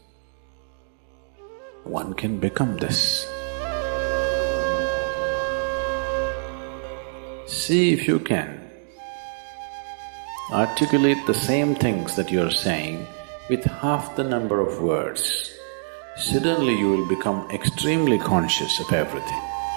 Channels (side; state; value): left; silent; digital silence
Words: One can become this. See if you can articulate the same things that you're saying with half the number of words. Suddenly you will become extremely conscious of everything.